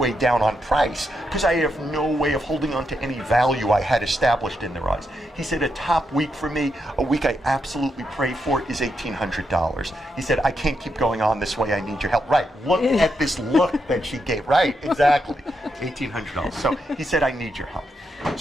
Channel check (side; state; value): both; normal; correlation 0.82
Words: down on price, because I have no way of holding on to any value I had established in their eyes. He said a top week for me, a week I absolutely pray for, is $1,800. He said, I can't keep going on this way, I need your help. Right, look at this look that she gave. Right, exactly, $1,800. So he said, I need your help.